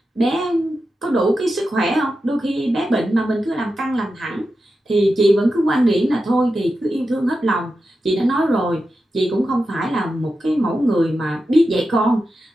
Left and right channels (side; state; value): both; normal; correlation 0.90